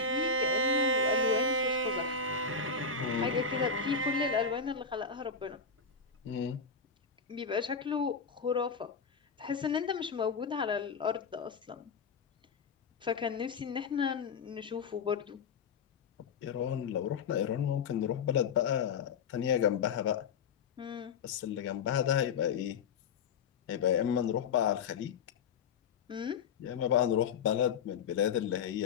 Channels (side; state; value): right; quieter; 5.4 dB